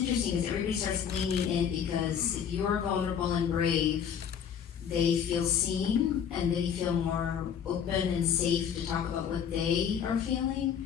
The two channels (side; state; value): right; quieter; 8.1 dB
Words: because everybody starts leaning in because if you're vulnerable and brave, they feel seen and they feel more open and safe to talk about what they are feeling.